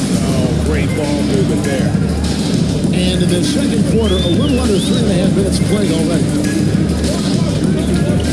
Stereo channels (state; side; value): identical; both; correlation 1.00